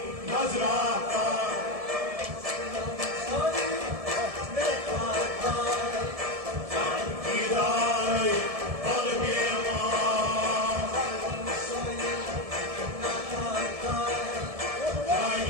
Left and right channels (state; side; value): late; left; 1.7 ms